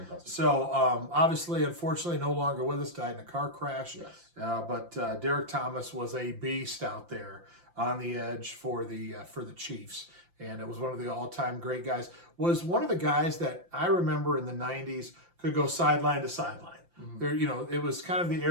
So obviously, unfortunately, no longer with us, died in a car crash. Yes. But Derek Thomas was a beast out there on the edge for the Chiefs, and it was one of the all-time great guys. Was one of the guys that I remember in the 90s could go sideline to sideline. There, it was kind of the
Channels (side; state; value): left; late; 5.8 ms